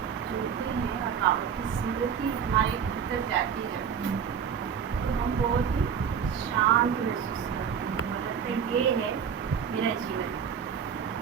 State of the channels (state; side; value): quieter; left; 7.5 dB